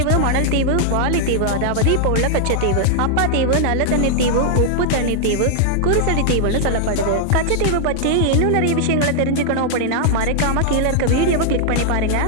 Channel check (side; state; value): both; different; correlation -0.01